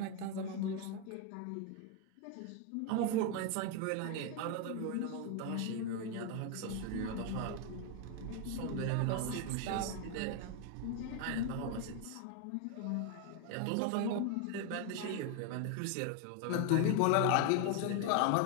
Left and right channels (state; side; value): different; both; correlation 0.01